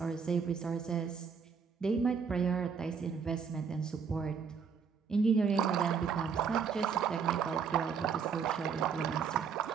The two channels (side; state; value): left; quieter; 6.3 dB